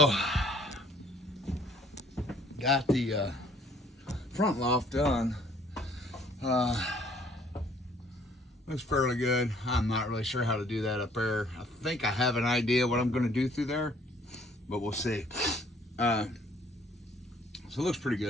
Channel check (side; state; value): both; normal; correlation 0.60